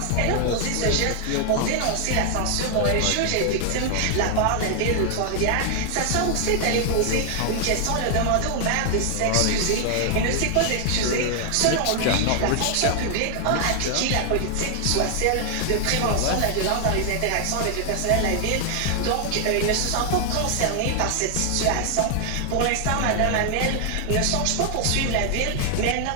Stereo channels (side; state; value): both; different; correlation 0.00